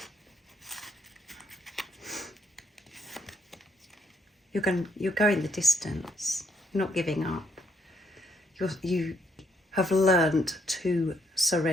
You're going the distance. You're not giving up. You have learned to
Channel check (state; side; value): normal; both; correlation 0.72